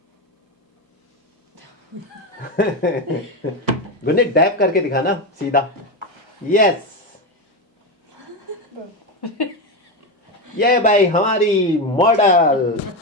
गुनीत डैप करके दिखाना सीधा। यस, ये भाई हमारी मॉडल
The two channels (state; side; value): normal; both; correlation 0.14